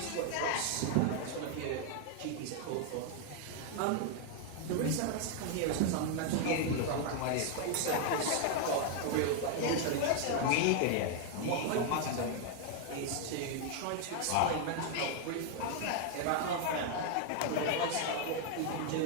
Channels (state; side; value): different; both; correlation 0.00